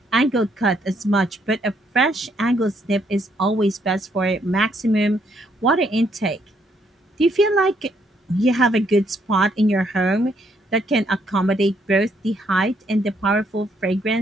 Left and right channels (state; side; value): normal; both; correlation 0.72